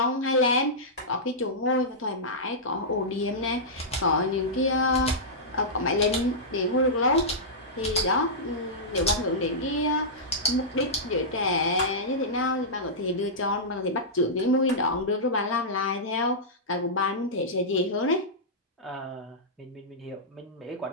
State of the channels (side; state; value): both; normal; correlation -0.13